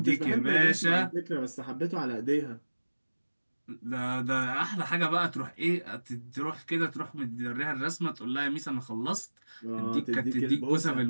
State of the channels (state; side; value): inverted; both; correlation -1.00